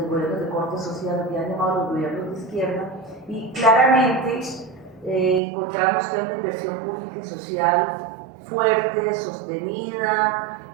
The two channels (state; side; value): drops out; left; at 5.4 s